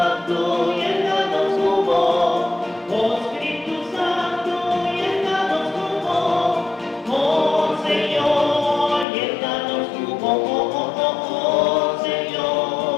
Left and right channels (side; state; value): right; drops out; at 9.1 s